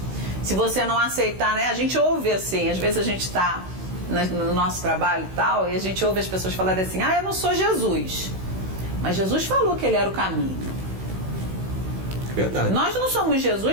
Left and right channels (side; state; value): left; late; 16 ms